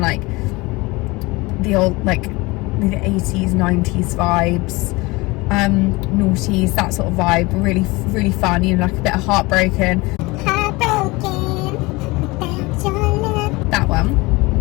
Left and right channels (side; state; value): right; quieter; 23.3 dB